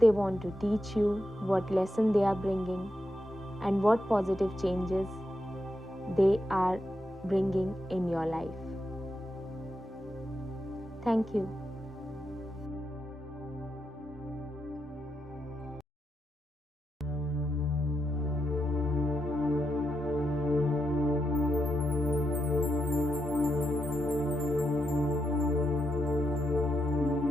want to teach you, what lesson they are bringing, and what positive changes they are bringing in your life. Thank you.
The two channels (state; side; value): normal; both; correlation 0.84